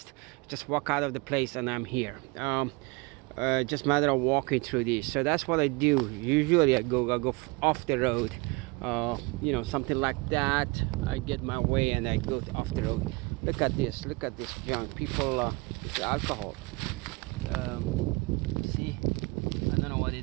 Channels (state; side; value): quieter; left; 26.3 dB